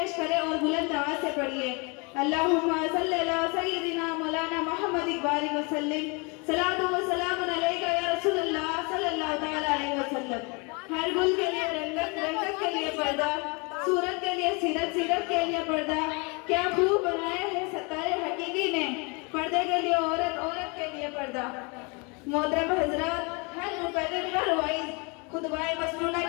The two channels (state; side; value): quieter; right; 30.7 dB